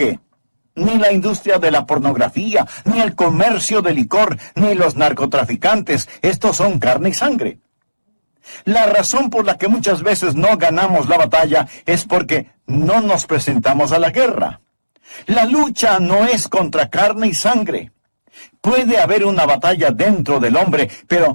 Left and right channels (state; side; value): inverted; both; correlation -1.00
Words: ni la industria de la pornografía, ni el comercio de licor, ni los narcotraficantes. Estos son carne y sangre. La razón por la que muchas veces no ganamos la batalla es porque no nos presentamos a la guerra. La lucha no es contra carne y sangre. Puede haber una batalla dentro del hombre,